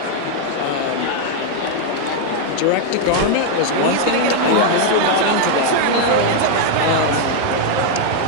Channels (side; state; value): both; different; correlation 0.00